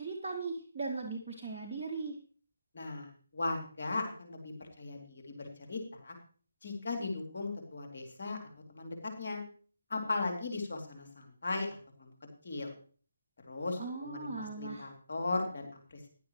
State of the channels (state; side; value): inverted; both; correlation -0.82